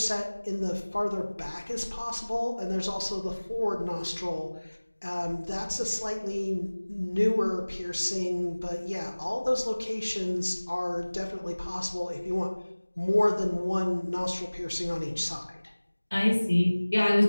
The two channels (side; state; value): both; inverted; correlation -1.00